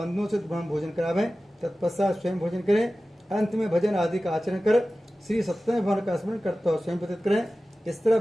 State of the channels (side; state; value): both; normal; correlation 0.96